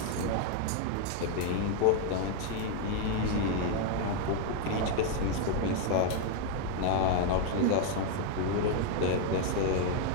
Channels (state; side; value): different; both; correlation 0.00